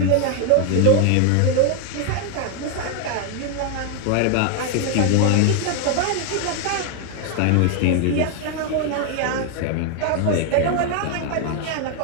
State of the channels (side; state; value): both; different; correlation 0.01